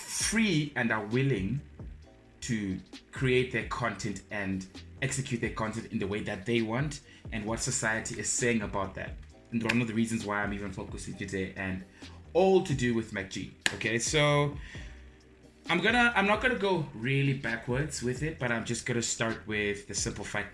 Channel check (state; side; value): identical; both; correlation 1.00